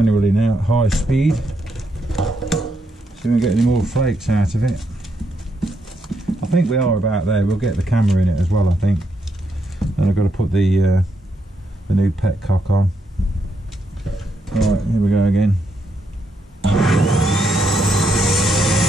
now at high speed. See if we get any more flakes out of it. I think we are about there. We'll get the camera in it as well, I think. And I've got to put the new petcock on. Alright, here we go again.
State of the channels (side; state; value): both; normal; correlation 0.79